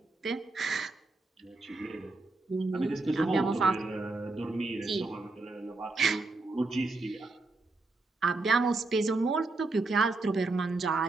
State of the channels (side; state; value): left; quieter; 3.4 dB